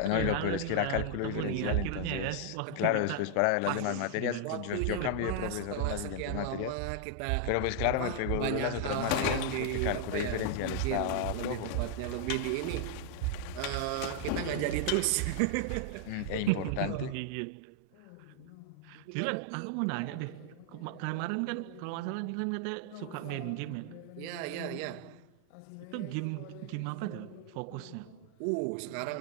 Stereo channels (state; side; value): different; both; correlation -0.01